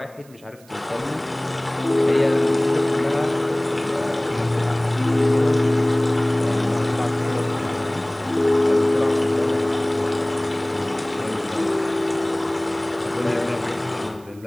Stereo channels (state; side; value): noise; right; hiss, 27 dB below the sound